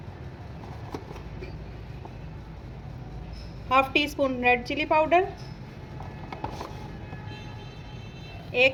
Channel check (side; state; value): both; identical; correlation 1.00